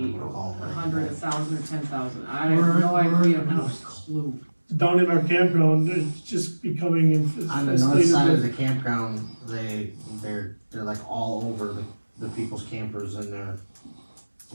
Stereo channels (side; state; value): both; inverted; correlation -1.00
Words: 100, 1,000, or 10,000, I have no idea, not a clue. Down in our campground, it's just becoming On the north side of infested. the campground, they're like all over the people's campers and